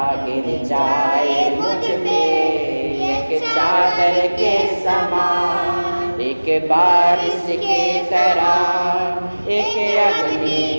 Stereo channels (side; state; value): both; inverted; correlation -1.00